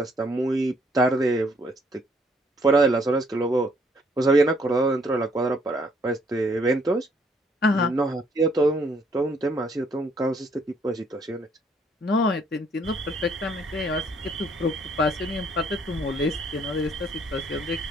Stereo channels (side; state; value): both; normal; correlation 0.66